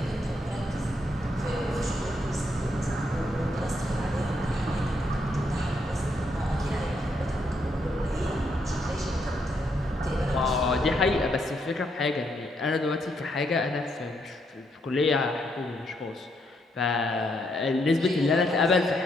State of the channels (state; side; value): normal; both; correlation 0.76